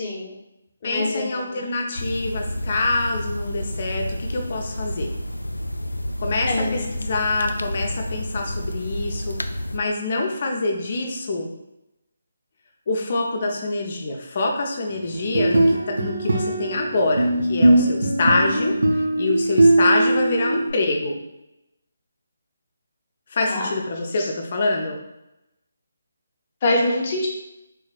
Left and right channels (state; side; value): inverted; both; correlation -0.85